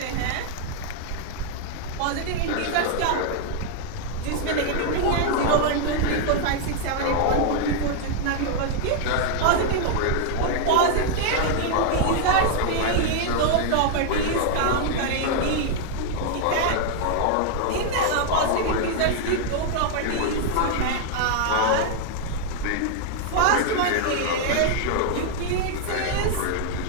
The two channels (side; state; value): both; different; correlation 0.00